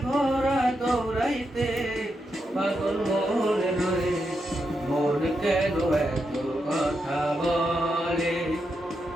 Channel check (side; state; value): both; normal; correlation 0.84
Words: ঘোড়া দৌড়াইতে। পাগল মন রে, মন কেন এত কথা বলে?